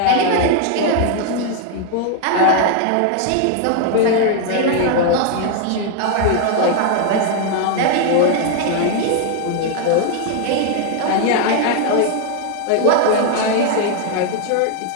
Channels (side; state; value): both; different; correlation 0.00